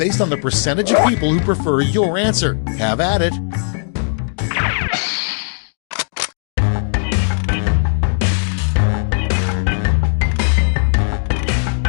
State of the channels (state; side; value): silent; right; digital silence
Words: on the percentage of people who prefer your answer. Have at it.